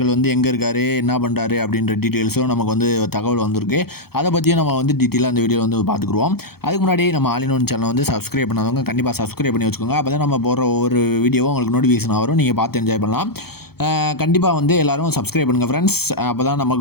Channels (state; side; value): late; right; 0.95 ms